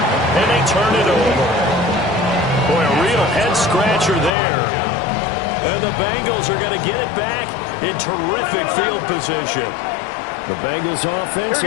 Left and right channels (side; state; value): right; drops out; at 4.3 s